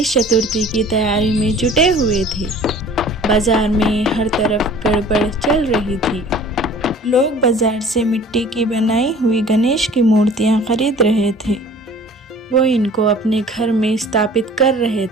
चतुर्थी की तैयारी में जुटे हुए थे। बाजार में हर तरफ गड़बड़ चल रही थी। लोग बाजार से मिट्टी की बनाई हुई गणेश की मूर्तियां खरीद रहे थे। वो इनको अपने घर में स्थापित कर रहे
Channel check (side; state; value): both; normal; correlation 0.47